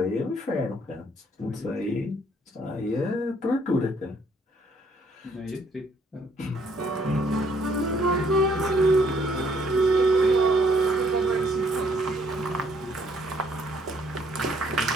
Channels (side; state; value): both; normal; correlation 0.66